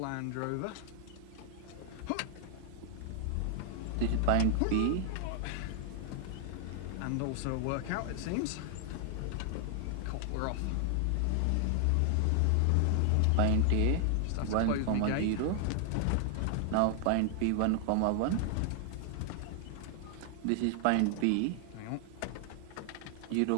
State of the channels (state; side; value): different; both; correlation 0.00